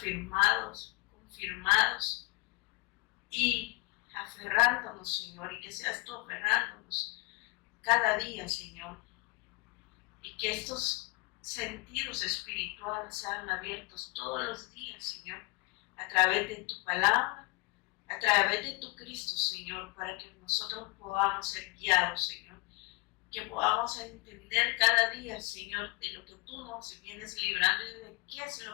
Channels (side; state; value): right; quieter; 25.7 dB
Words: confirmados y aferrándonos, Señor, y que seas tú aferrándonos cada día, Señor, y que estos sentidos espirituales sean abiertos todos los días, Señor, a través de tu palabra, a través de tu Cristo, Señor, para que nosotros podamos ser guiados, Señor, que podamos entender cada día, Señor, de lo que tú nos vienes librando y de qué es